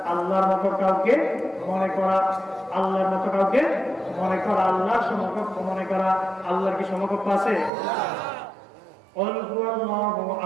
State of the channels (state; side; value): drops out; left; at 7.7 s